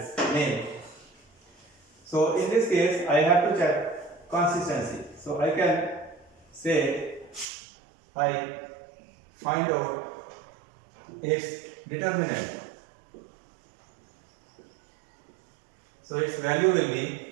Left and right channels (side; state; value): left; drops out; at 7.5 s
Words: name. So in this case I have to check consistency. So I can say I find out its determinant. So its value will